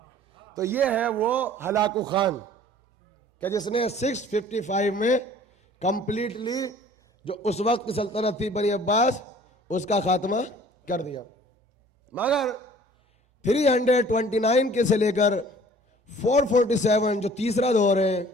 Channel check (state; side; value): normal; both; correlation 0.51